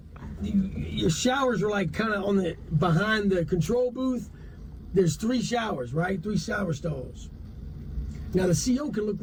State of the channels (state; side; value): identical; both; correlation 1.00